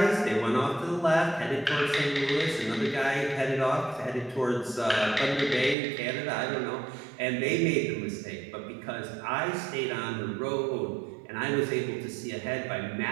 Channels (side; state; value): left; drops out; at 5.8 s